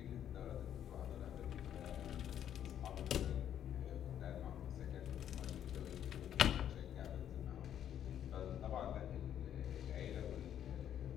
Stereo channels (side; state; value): right; quieter; 10.1 dB